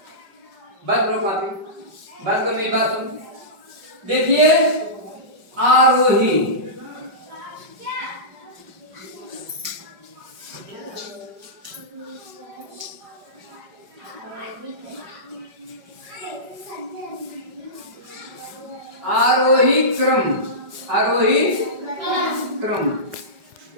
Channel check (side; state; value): left; late; 5.2 ms